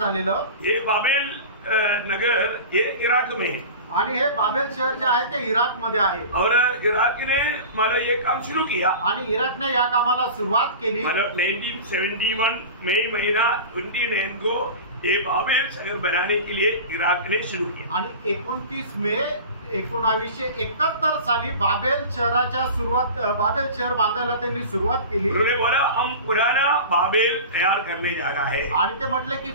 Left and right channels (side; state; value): both; inverted; correlation -0.34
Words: ये बाबेल नगर ये इराक में है आणि हे बाबेल शहर जे आहे ते इराक मध्ये आहे और इराक ने मतलब ये काम शुरू किया आणि इराकने या कामाला सुरुवात केली। मतलब 1971 मई महीना 29 को ये बाबेल शहर बनाने के लिए इराक ने शुरू किया आणि 29 मे 1971 साली बाबेल शहराच्या बाबेल शहर बांधायला त्यांनी सुरुवात केली। उन्होंने बोला हम पुराना बाबेल तैयार करने जा रहा है आणि ते म्हटले की